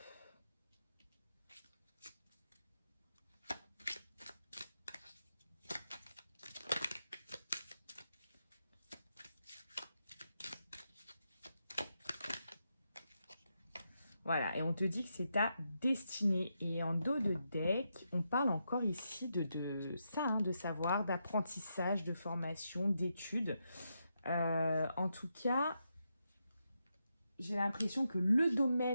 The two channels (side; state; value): both; inverted; correlation -0.84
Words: Voilà, et on te dit que c'est ta destinée. Et en dos de deck, on parle encore ici de ça, hein, de savoir, d'apprentissage, de formation, d'études. En tout cas, j'ai l'impression que le